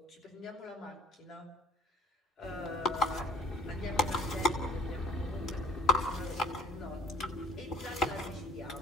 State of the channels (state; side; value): normal; both; correlation 0.53